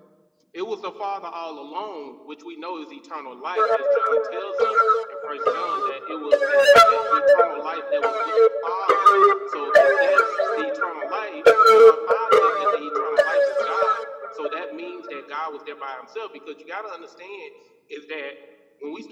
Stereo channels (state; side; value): identical; both; correlation 1.00